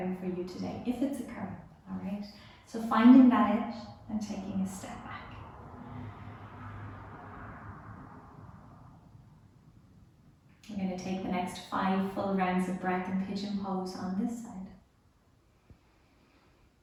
for you today, if it's occurring, all right? So finding that out and taking a step back. We're going to take the next 5 full rounds of breath in pigeon pose on this side.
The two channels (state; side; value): identical; both; correlation 1.00